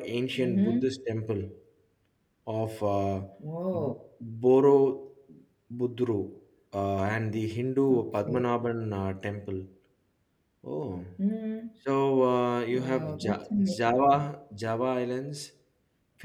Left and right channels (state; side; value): identical; both; correlation 1.00